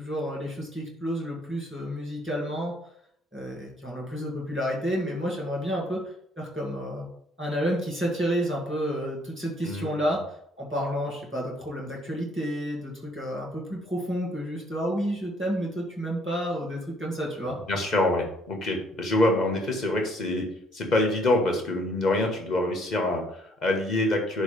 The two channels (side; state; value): both; normal; correlation 0.65